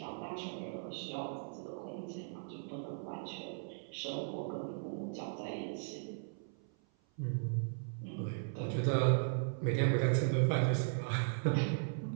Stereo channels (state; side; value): silent; left; 53 dB below the other